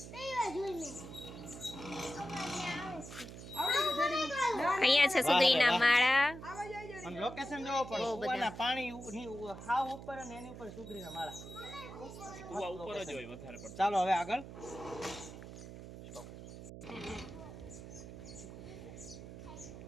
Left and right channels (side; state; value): right; noise; hum, 12 dB below the sound